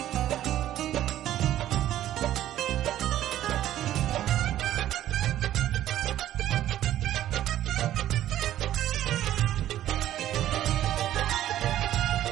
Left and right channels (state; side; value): quieter; left; 12.7 dB